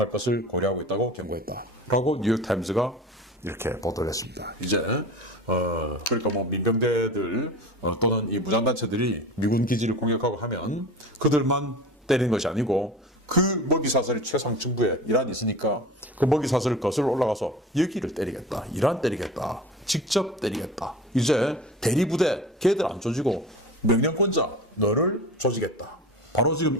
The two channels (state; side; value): normal; both; correlation 0.35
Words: 것을 고려하고 있다고 경고했다. 라고 뉴욕타임즈가 이렇게 보도를 했습니다. 이제 그러니까 뭐 민병대들 또는 이 무장단체들이 미군 기지를 공격하고 하면 그들만 때리는 것이 아니고, 그 먹이 사슬이 최상층부에 이란이 있으니까 그 먹이 사슬을 거슬러 올라가서 여기를 때리겠다, 이란 때리겠다, 직접 때리겠다. 이제 대리부대 걔들 안 조지고 명령권자 너를 조지겠다. 바로 지금